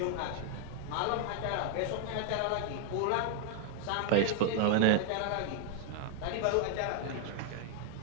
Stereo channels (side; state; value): both; different; correlation 0.00